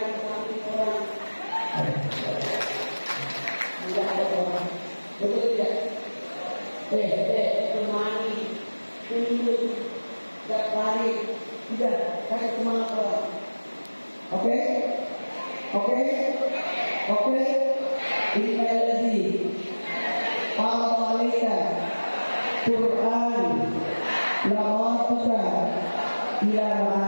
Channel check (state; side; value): inverted; both; correlation -1.00